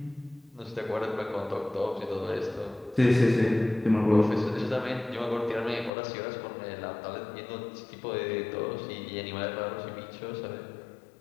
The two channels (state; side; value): drops out; right; at 5.9 s